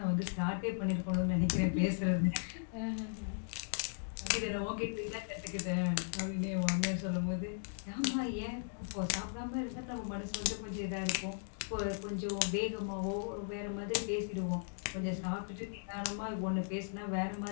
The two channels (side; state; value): right; silent; digital silence